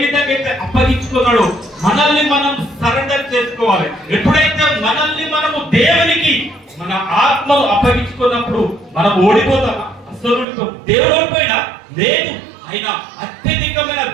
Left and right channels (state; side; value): drops out; left; at 10.5 s